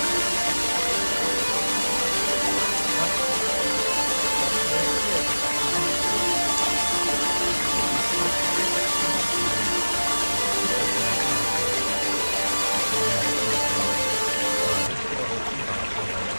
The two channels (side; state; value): both; inverted; correlation -1.00